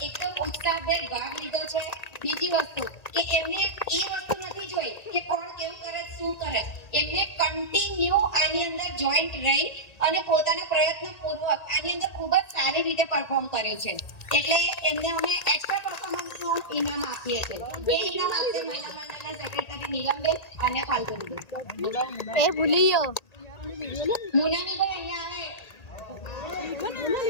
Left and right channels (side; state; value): right; late; 1.8 ms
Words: એકદમ ઉત્સાહભેર ભાગ લીધો છે. બીજી વસ્તુ કે એમને એ વસ્તુ નથી જોઈ કે કોણ કેવું કરે શું કરે. એમને કન્ટિન્યુ આની અંદર જોઈન્ટ રહી અને પોતાના પ્રયત્નપૂર્વક આની અંદર ખૂબ જ સારી રીતે પરફોર્મ કર્યું છે. એટલે એમને અમે એક્સ્ટ્રા પરફોર્મન્સનું ઇનામ આપીએ છીએ. એ ઇનામ આપશે મહિલા મંડળના સેક્રેટરી નીલમબેન અને ફાલ્ગુનીબેન. એ ભૂલી ગયો મુનામીભાઈ અહીંયા આવે.